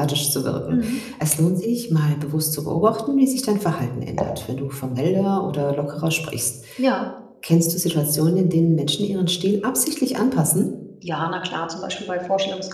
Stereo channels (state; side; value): identical; both; correlation 1.00